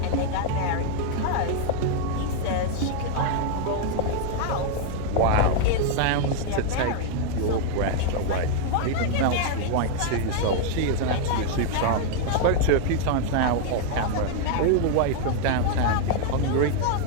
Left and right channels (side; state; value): both; different; correlation 0.00